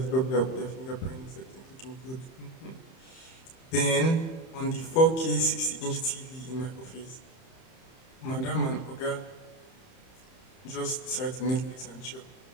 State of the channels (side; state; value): right; late; 31 ms